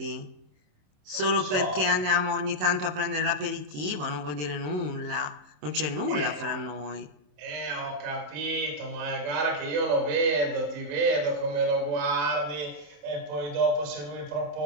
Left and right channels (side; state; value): left; late; 27 ms